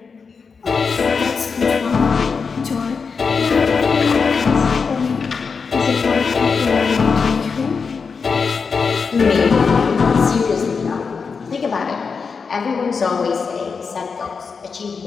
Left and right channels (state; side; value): quieter; right; 5.3 dB